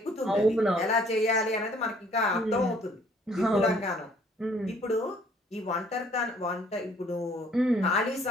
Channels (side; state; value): both; normal; correlation 0.60